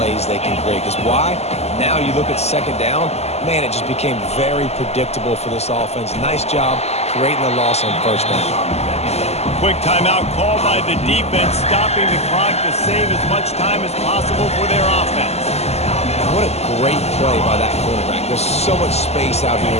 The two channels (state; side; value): late; right; 0.30 ms